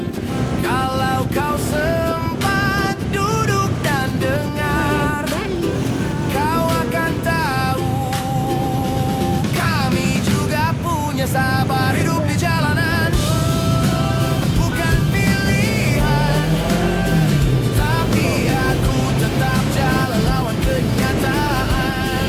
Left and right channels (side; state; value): both; identical; correlation 1.00